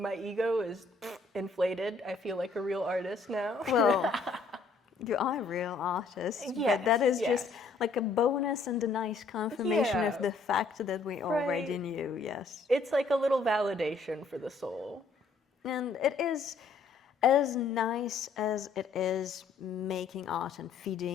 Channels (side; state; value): right; quieter; 4.1 dB